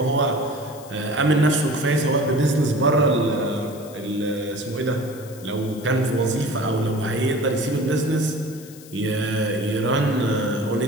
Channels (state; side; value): noise; left; hiss, 20 dB below the sound